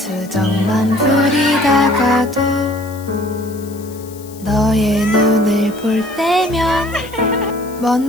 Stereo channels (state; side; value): noise; left; hiss, 21 dB below the sound